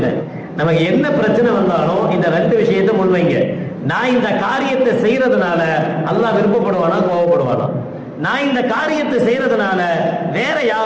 நமக்கு என்ன பிரச்சனை வந்தாலும் இந்த ரெண்டு விஷயத்தை முன்வைங்க. நான் இந்த காரியத்தை செய்யறதுனால அல்லாஹ் விருப்பப்படுவானா கோபப்படுவானா? நான் இந்த காரியத்தை செய்யறதுனால வேற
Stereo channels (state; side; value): identical; both; correlation 1.00